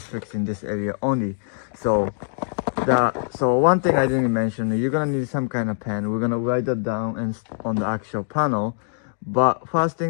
fixing this area only. So one thing I didn't mention, you're gonna need some kind of pen. We're gonna write that down and on the actual panel. But first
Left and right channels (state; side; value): silent; right; digital silence